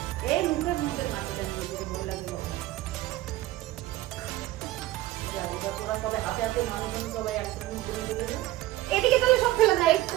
এই মুখে নাচতে দিয়ে ভয় লাগে বাবা। যা এবার তোরা সবাই হাতে মানুষ সবাই একসঙ্গে ঘুরে চলে যায়। এদিকে তাহলে সব ফেলে দেয়।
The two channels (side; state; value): left; quieter; 16.4 dB